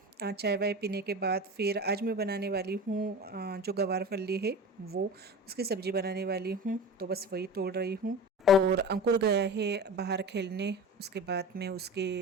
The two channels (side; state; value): both; normal; correlation 0.32